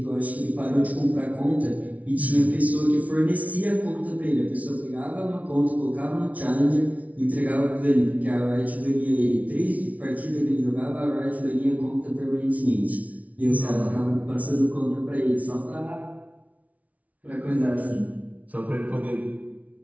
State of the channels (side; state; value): left; late; 0.069 ms